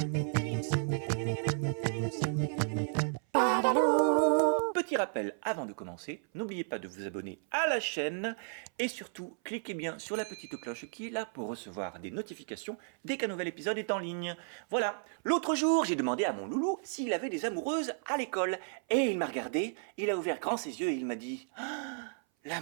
Petit rappel avant de commencer, n'oubliez pas de vous abonner à la chaîne et surtout cliquez bien sur la petite cloche qui est là pour recevoir des notifications dès qu'un nouvel épisode est en ligne. Voilà, l'autre jour j'ai demandé à mon loulou s'il avait des amoureuses à l'école et il m'a regardé, il a ouvert grand ses yeux et il m'a dit ah,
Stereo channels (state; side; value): silent; left; 56 dB below the other